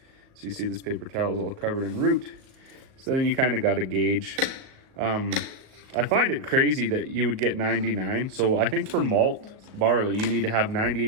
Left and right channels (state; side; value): late; left; 38 ms